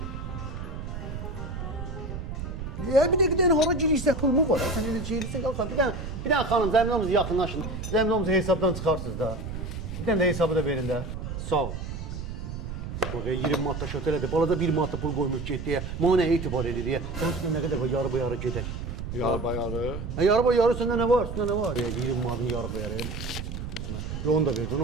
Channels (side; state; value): right; noise; rumble, 6 dB below the sound